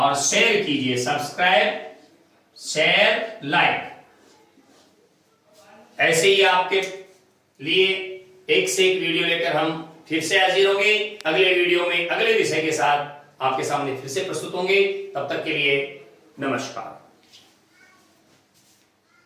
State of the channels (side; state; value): both; identical; correlation 1.00